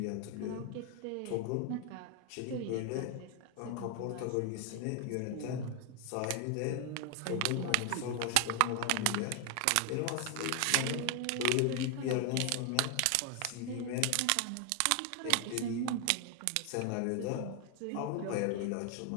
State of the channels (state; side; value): different; both; correlation 0.01